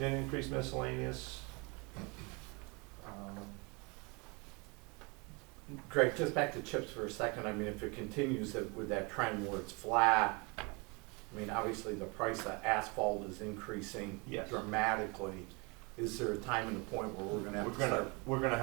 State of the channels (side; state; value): left; quieter; 29.5 dB